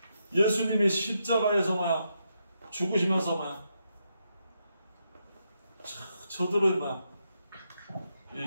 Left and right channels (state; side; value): inverted; both; correlation -0.82